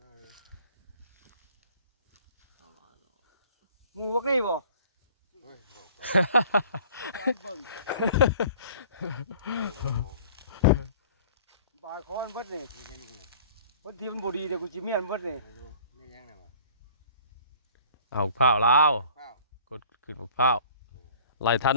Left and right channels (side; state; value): both; inverted; correlation -0.50